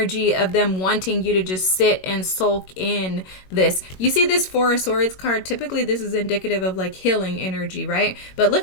of them wanting you to just sit and sulk in this. You see this Four of Swords card? Typically, this is indicative of like healing energy, right? But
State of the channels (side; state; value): right; late; 21 ms